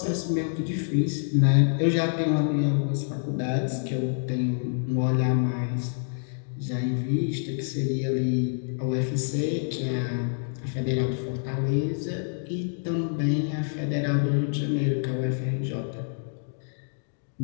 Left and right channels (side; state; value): right; silent; digital silence